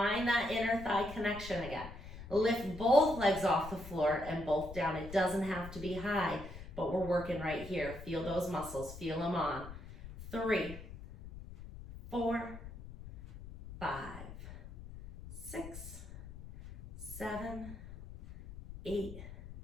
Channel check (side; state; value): left; noise; rumble, 13 dB below the sound